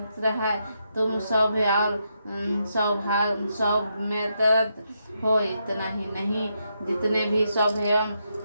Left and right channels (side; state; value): both; inverted; correlation -0.81